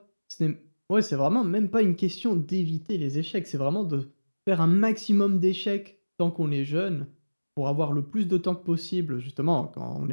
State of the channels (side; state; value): both; inverted; correlation -1.00